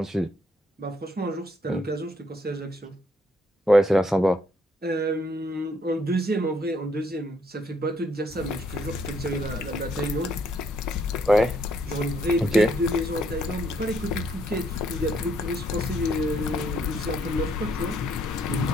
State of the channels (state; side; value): normal; both; correlation 0.70